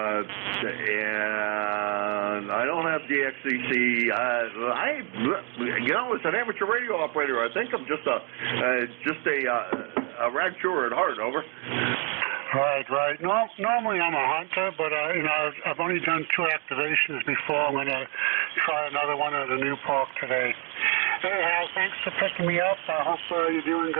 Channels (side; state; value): left; quieter; 35.6 dB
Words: And I don't have DXCC. As an amateur radio operator, I think I'm just a rag chewer at heart. Over. Right. No, normally I'm a hunter, but I've only done 2 activations before. I'm going to try another one at a new park today. Anyhow, thanks for picking me up. I hope you're doing